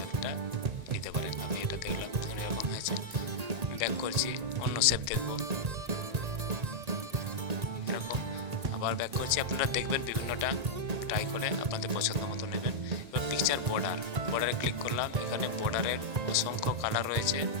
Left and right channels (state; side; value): late; left; 1.8 ms